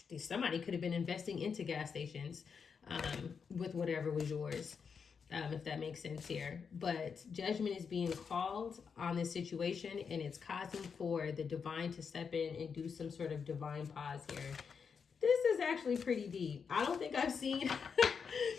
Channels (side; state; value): right; quieter; 6.1 dB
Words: could have been investing into gas stations with whatever was yours, if that makes sense here. But judgment is being called on this situation, and it's causing for the divine to step in and do some sort of divine pause here. This is actually pretty deep. I don't think I've seen